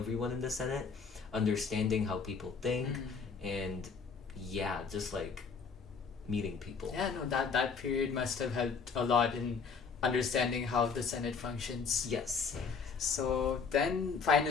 in the Senate, understanding how people think, and yeah, just like meeting people. Yeah, no, that period must have helped a lot in understanding how the Senate functions. Yes. So then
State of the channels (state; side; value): quieter; right; 5.4 dB